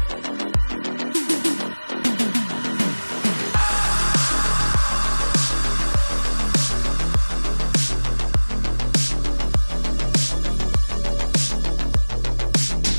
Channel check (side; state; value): both; inverted; correlation -1.00